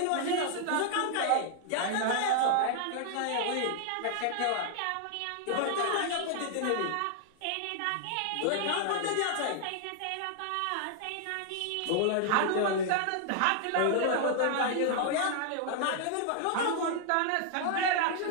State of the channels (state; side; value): different; both; correlation 0.00